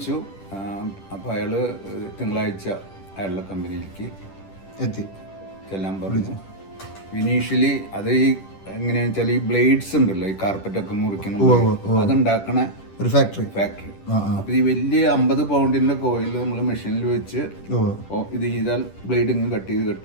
അപ്പൊ അയാള് തിങ്കളാഴ്ച അയാളുടെ കമ്പനിയിലേക്ക് എത്തി ചെല്ലാൻ പറഞ്ഞു. ഇനീഷ്യലി അത് ഈ എങ്ങനെയാന്ന് വെച്ചാൽ ഈ ബ്ലേഡ്സ് ഉണ്ടല്ലോ, ഈ കാർപ്പറ്റൊക്കെ മുറിക്കണം, അതുണ്ടാക്കണ ഒരു ഫാക്ടറി. അപ്പൊ ഈ വലിയ 50 പൗണ്ടിന്റെ കോയിൽ നമ്മൾ മെഷീനിൽ വെച്ച് ഇത് ചെയ്താൽ ബ്ലേഡ് ഇങ്ങ് കട്ട്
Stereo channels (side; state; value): right; late; 10 ms